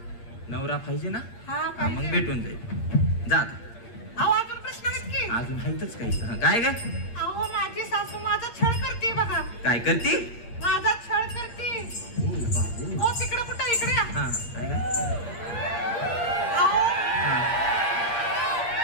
नवरा पाहिजे ना? हा हा, मग पाहिजे. भेटून जाईल. जा आता. अहो अजून प्रश्न आहेत की? अजून हायतच काही. हा, काय ग? अहो माझी सासू माझा छळ करते बघा. काय करती? माझा छळ करते. हो तिकडे कुठं इकडे या. हा काय ग? अहो हा,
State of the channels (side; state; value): right; late; 8.6 ms